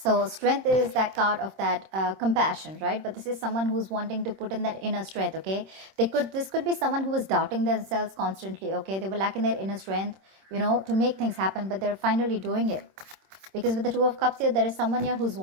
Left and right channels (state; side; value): late; left; 26 ms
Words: So Strength is that card of that compassion, right? But this is someone who's wanting to put in that inner strength, okay? This could be someone who is doubting themselves constantly, okay? They were lacking their inner strength, you know, to make things happen, but they're finally doing it. Because with the Two of Cups here, there is someone here who's